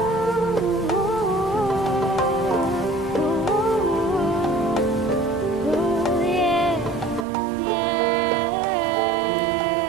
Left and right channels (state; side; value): drops out; left; at 7.2 s